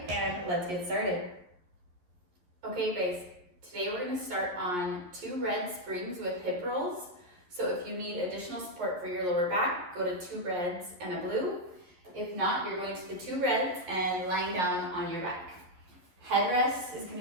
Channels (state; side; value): late; left; 11 ms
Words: and let's get started. Okay guys, today we're going to start on 2 red springs with hip rolls. So if you need additional support for your lower back, go to 2 reds and a blue. If not, you're going to the 2 reds and lying down on your back. Headrest is going